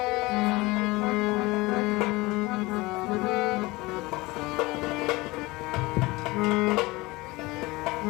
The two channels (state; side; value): quieter; right; 22.0 dB